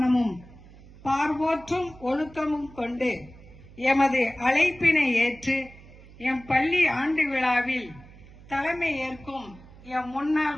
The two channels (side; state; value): right; noise; hum, 21 dB below the sound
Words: பார்வோற்றும் ஒழுக்கமும் கொண்டு எமது அழைப்பினை ஏற்று எம் பள்ளி ஆண்டு விழாவில் தலைமை ஏற்கும் எம்